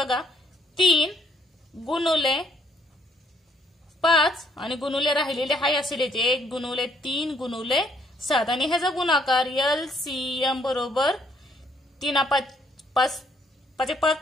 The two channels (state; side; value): normal; both; correlation 0.68